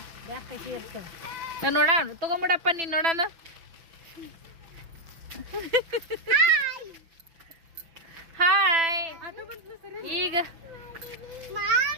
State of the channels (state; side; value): late; left; 6.0 ms